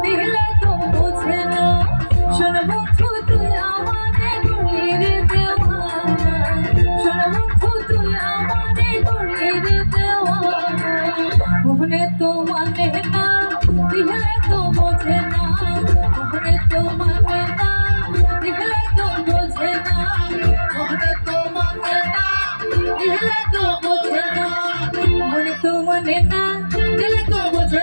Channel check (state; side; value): inverted; both; correlation -1.00